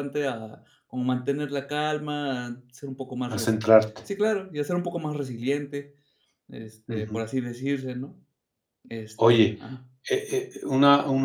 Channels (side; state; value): both; identical; correlation 1.00